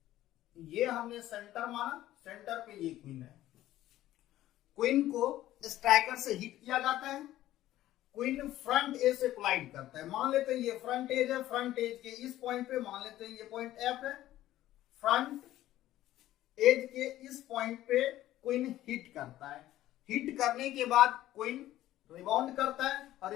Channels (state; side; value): quieter; right; 14.3 dB